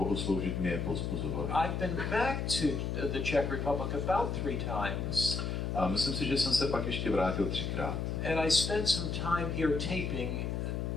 sloužit mě povzbuzovaly. I've been back to the Czech Republic about 3 times. A myslím si, že jsem se pak ještě vrátil 3krát. And I spent some time here taping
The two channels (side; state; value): left; noise; hum, 1 dB below the sound